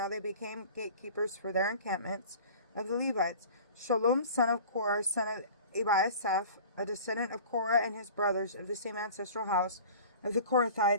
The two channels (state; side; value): inverted; both; correlation -0.42